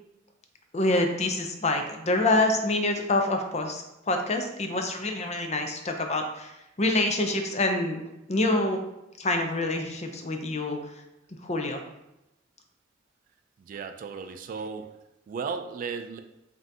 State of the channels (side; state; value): both; normal; correlation 0.18